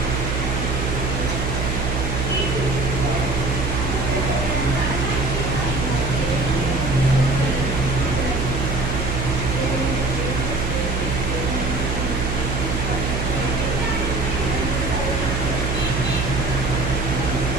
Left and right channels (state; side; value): noise; right; hum, 1 dB below the sound